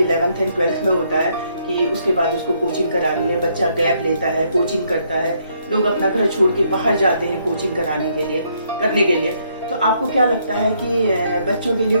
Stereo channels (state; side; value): inverted; both; correlation -0.71